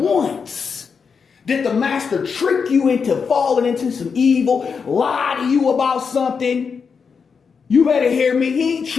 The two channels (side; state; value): right; quieter; 5.8 dB